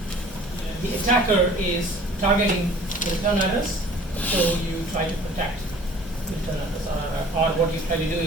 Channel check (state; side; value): normal; both; correlation 0.49